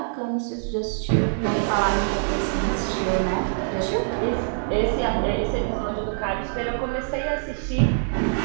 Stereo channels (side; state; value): left; silent; 62 dB below the other